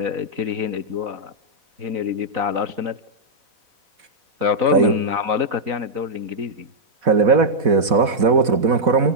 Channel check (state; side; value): late; left; 4.1 ms